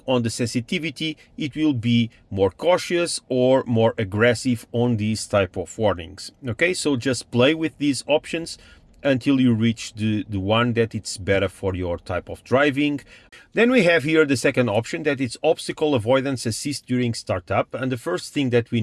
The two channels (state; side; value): identical; both; correlation 1.00